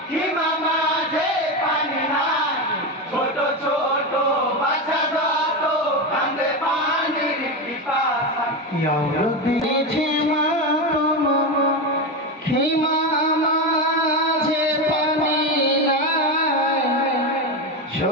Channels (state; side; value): normal; both; correlation 0.15